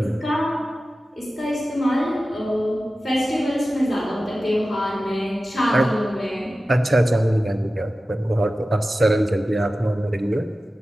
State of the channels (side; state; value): both; normal; correlation 0.95